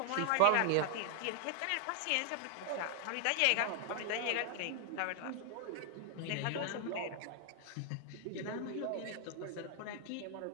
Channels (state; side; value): different; both; correlation 0.00